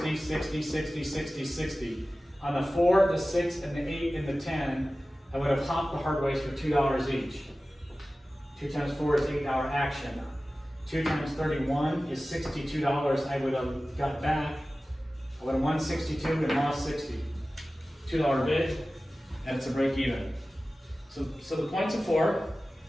60, 60, 60, 60. On the 4, the 6, and the 8, and the 10, I would have hopped the hard ways for $2 each. 2 times 4 is $8 action. 2 times 31 is $62 I would have got back. I would have won 62 and lost 60. $2 bid, and it's a break even. So the points of 4.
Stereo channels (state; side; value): normal; both; correlation 0.96